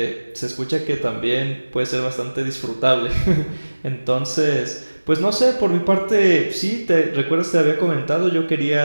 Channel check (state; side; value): inverted; both; correlation -1.00